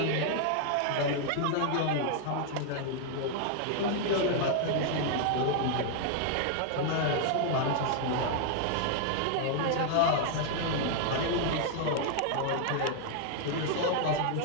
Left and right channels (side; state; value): both; different; correlation 0.00